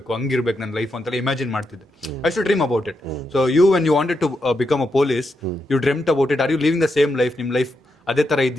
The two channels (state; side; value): normal; both; correlation 0.83